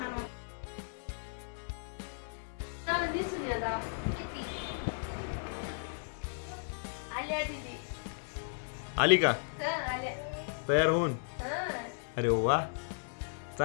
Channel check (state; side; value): silent; right; digital silence